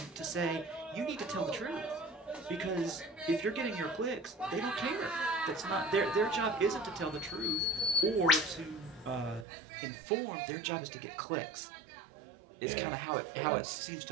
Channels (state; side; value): drops out; left; at 9.5 s